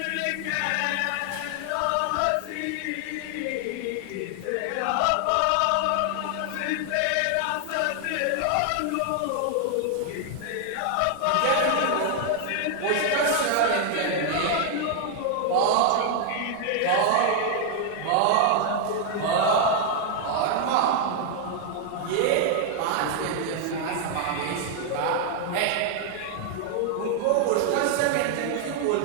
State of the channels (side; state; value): both; different; correlation 0.00